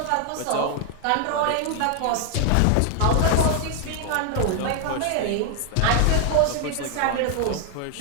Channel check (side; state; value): both; different; correlation 0.00